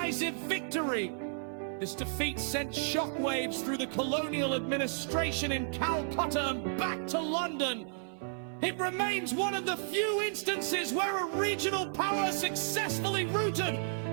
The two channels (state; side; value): silent; left; 56 dB below the other